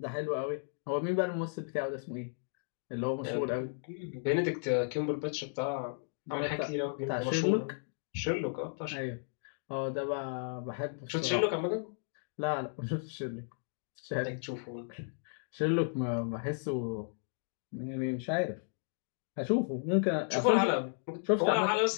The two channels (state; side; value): silent; right; digital silence